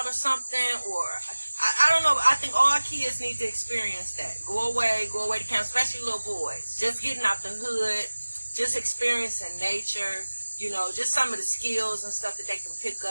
or something, or I don't know. I think all kids need to experience that. Go away to camp, especially little boys. Just getting out the hood, just experiencing nature, just some of the skills and stuff that they can pick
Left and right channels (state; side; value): inverted; both; correlation -1.00